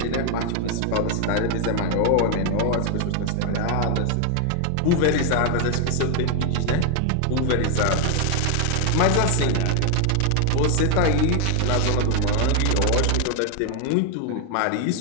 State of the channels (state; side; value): different; both; correlation 0.00